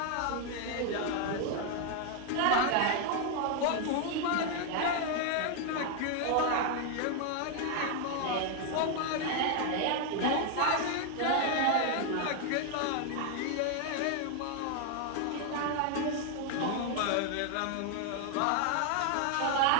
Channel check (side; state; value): both; different; correlation 0.00